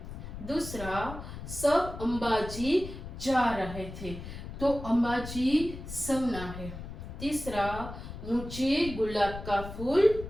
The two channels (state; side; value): noise; left; rumble, 10 dB below the sound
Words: दूसरा, सब अंबाजी जा रहे थे, तो अंबाजी संज्ञा है। तीसरा, मुझे गुलाब का फूल